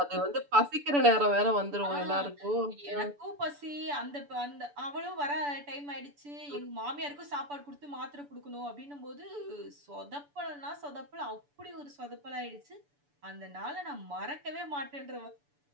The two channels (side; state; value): left; late; 6.9 ms